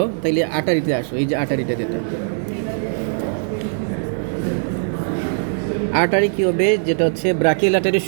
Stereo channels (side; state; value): left; silent; digital silence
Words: তাইলে আর্টারিতে আসো, এই যে আর্টারিটা যেটা, আর্টারি কী হবে, যেটা হচ্ছে ব্রাকিয়াল আর্টারির